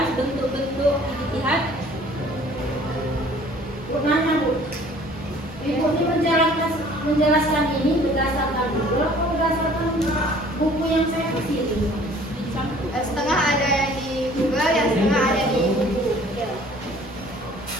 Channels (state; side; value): normal; both; correlation 0.53